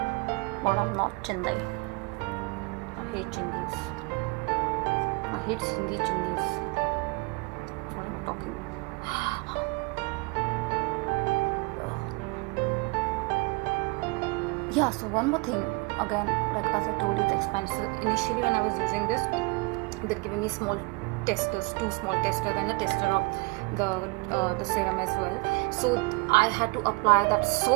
but I'm not Chindi. I hate Chindis. I hate Sindhi Chindis. Talking. Yeah, so one more thing, again, like as I told you, it's expensive. Initially when I was using this, they're giving me small testers, 2 small testers, and a tester of the serum as well. So I had to apply that so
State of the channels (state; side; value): quieter; left; 28.5 dB